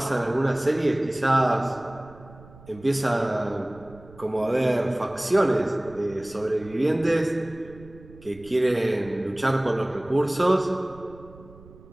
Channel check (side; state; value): right; noise; rumble, 21 dB below the sound